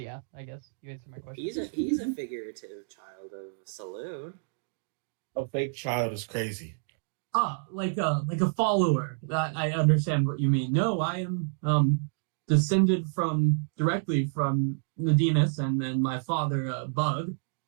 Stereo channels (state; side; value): silent; left; digital silence